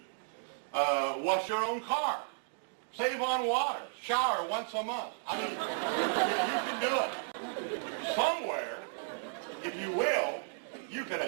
Wash your own car. Save on water. Shower once a month. I mean, you can do it. Somewhere, if you will, you can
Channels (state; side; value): silent; left; digital silence